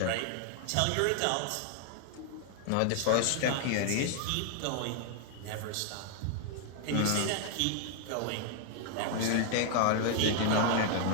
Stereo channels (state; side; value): different; both; correlation 0.00